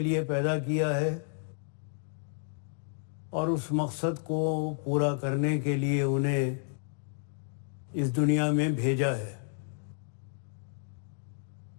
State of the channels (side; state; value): right; silent; digital silence